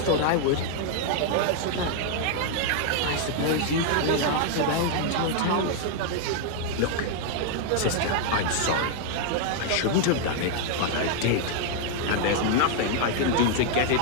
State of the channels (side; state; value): both; different; correlation 0.00